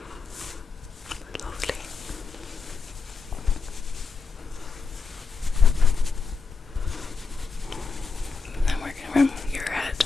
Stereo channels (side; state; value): right; quieter; 4.7 dB